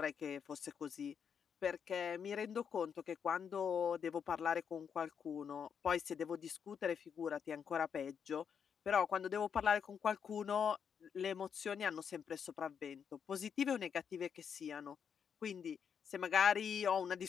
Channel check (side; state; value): right; quieter; 7.2 dB